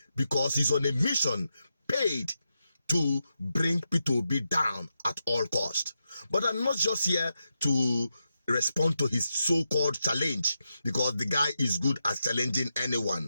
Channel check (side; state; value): both; inverted; correlation -0.87